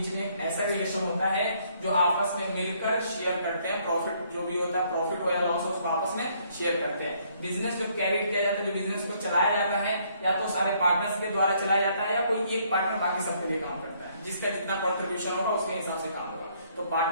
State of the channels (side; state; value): both; inverted; correlation -0.67